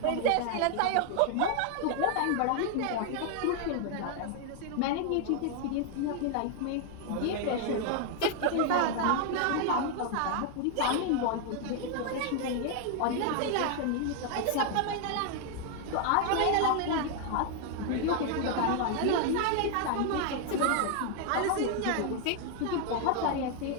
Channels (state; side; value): different; both; correlation 0.00